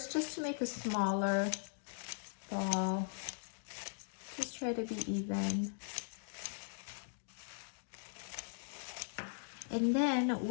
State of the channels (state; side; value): silent; right; digital silence